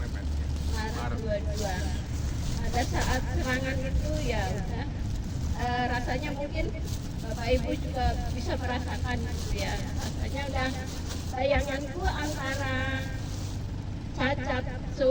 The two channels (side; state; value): both; identical; correlation 1.00